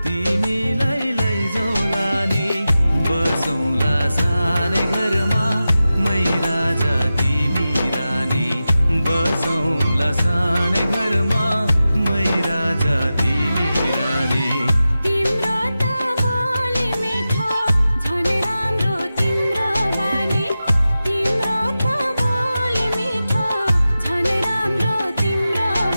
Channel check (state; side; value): inverted; both; correlation -0.93